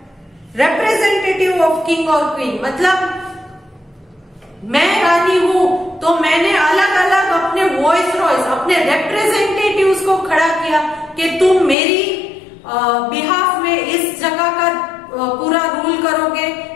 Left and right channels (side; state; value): right; drops out; at 11.8 s